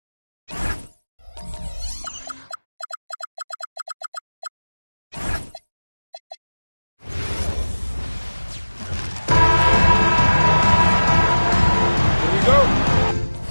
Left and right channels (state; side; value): inverted; both; correlation -1.00